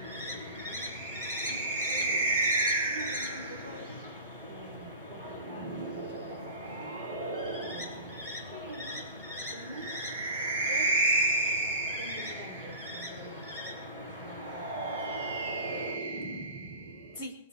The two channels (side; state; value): both; inverted; correlation -0.36